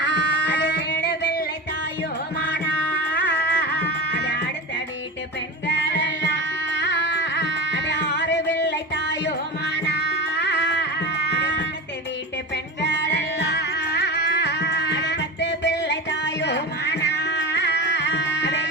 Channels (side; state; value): both; normal; correlation 0.27